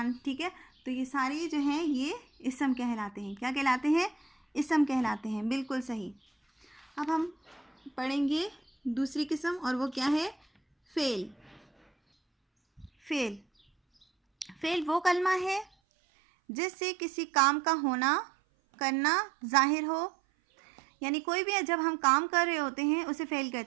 ٹھیک ہے، تو یہ ساری جو ہیں یہ اسم کہلاتے ہیں۔ کیا کہلاتے ہیں؟ اسم کہلاتے ہیں، بالکل صحیح۔ اب ہم پڑھیں گے دوسری قسم، اور وہ کیا ہے؟ فعل۔ فعل وہ کلمہ ہے جس سے کسی کام کا ہونا، کرنا ظاہر ہو۔ یعنی کوئی بھی جب ہم کام کر رہے ہوتے ہیں اسے فعل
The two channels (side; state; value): left; drops out; at 15.7 s